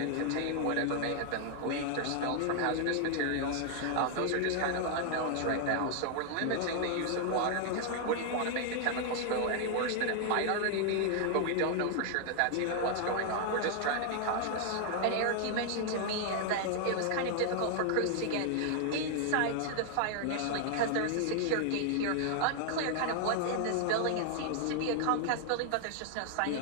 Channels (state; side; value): different; both; correlation 0.00